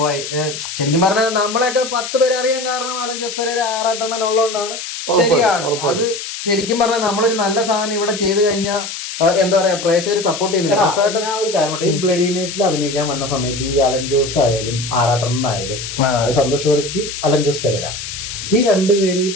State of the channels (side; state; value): left; noise; hiss, 8 dB below the sound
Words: ശരിക്കും പറഞ്ഞാൽ നമ്മളെയൊക്കെ 10 പേരെ അറിയാൻ കാരണം അലൻ ജോസ് പെരേര ആറാട്ടെണ്ണൻ ഉള്ളതുകൊണ്ടാണ്. ശരിയാണ്. അത് ശരിക്കും പറഞ്ഞാൽ നമ്മളൊരു നല്ല സാധനം ഇവിടെ ചെയ്തു കഴിഞ്ഞാൽ എന്താ പറയാ പ്രേക്ഷകർ സപ്പോർട്ട് ചെയ്യുന്നില്ല. ഞാൻ ഒരു കാര്യം ഈ ബ്ലഡി നൈറ്റിൽ അഭിനയിക്കാൻ വന്ന സമയത്ത് ഈ അലൻ ജോസ് ആയാലും ആറാട്ടണ്ണനായാലും സന്തോഷ് വർക്കി, അലൻ ജോസ് പെരേര, ഈ രണ്ടുപേര് ഈ